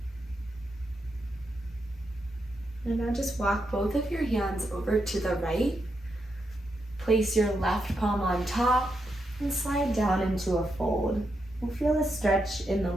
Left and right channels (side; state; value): both; normal; correlation 0.83